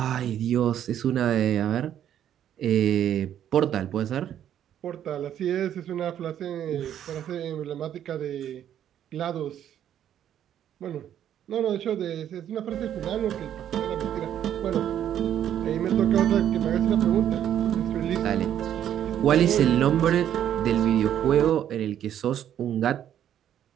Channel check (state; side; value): quieter; left; 10.4 dB